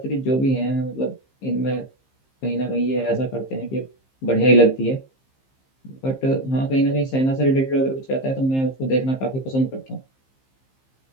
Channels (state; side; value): late; right; 15 ms